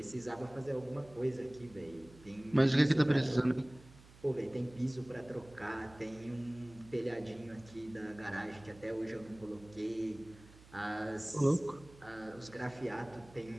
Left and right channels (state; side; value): noise; right; hum, 22 dB below the sound